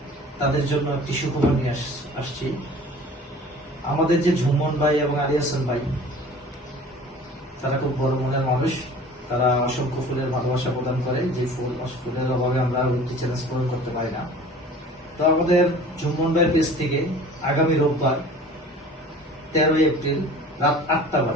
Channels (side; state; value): both; normal; correlation 0.44